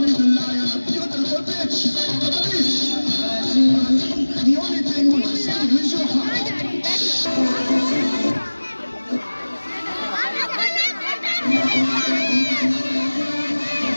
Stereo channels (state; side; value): inverted; both; correlation -1.00